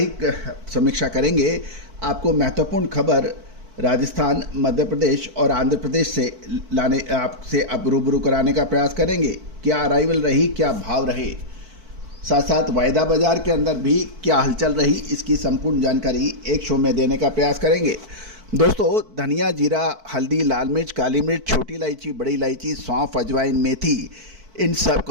समीक्षा करेंगे। आपको महत्वपूर्ण खबर राजस्थान, मध्य प्रदेश और आंध्र प्रदेश से लाने आपसे अब रूबरू कराने का प्रयास करेंगे। क्या अराइवल रही, क्या भाव रहे, साथ साथ वायदा बाजार के अंदर भी क्या हलचल रही, इसकी संपूर्ण जानकारी एक शो में देने का प्रयास करेंगे। दोस्तों, धनिया, जीरा, हल्दी, लाल मिर्च, काली मिर्च, छोटी इलायची, बड़ी इलायची, सौंफ, अजवाइन, मेथी, इन सब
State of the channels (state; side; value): late; left; 4.5 ms